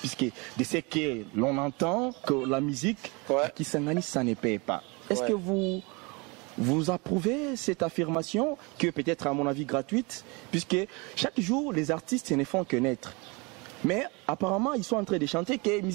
de ce que l'on entend que la musique, qui s'engage, ça ne paye pas. Est-ce que vous approuvez cette affirmation qui est peut-être à mon avis gratuite, puisque chaque jour les artistes ne font que naître. Mais apparemment ils sont en train de chanter que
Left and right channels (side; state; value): left; quieter; 28.4 dB